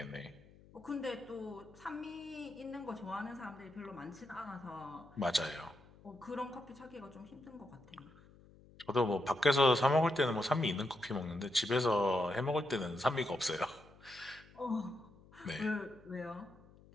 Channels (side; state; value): left; noise; hum, 24 dB below the sound